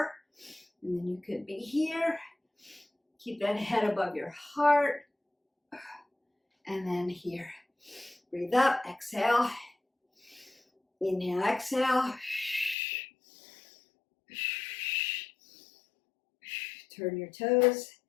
And then you could be here. Keep that head above your heart. And then here. Breathe up, exhale. Inhale, exhale. Turn your toes,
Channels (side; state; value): right; drops out; at 12.8 s